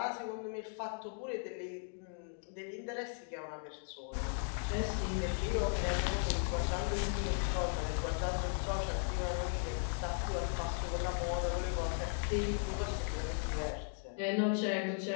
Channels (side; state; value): right; silent; 53 dB below the other